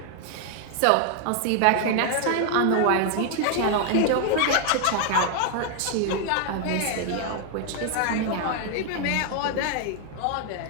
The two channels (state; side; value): different; both; correlation 0.00